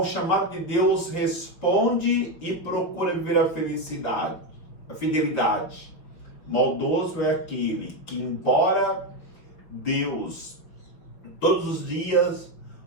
chamado de Deus responde e procura viver a felicidade, a fidelidade. Maldoso é aquele que, embora Deus todos os dias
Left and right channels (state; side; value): late; right; 5.9 ms